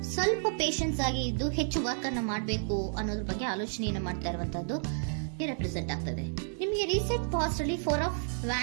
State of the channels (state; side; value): silent; left; digital silence